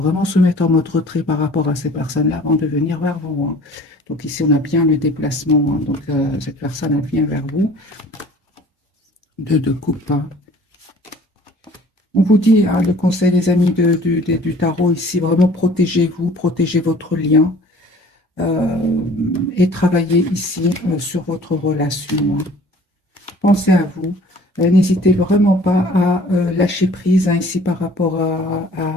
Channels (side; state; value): both; normal; correlation 0.50